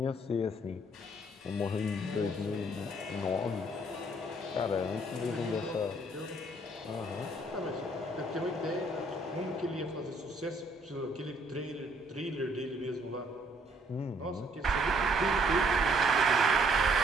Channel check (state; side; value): normal; both; correlation 0.65